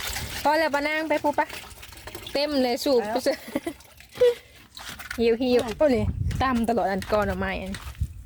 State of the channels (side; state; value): both; identical; correlation 1.00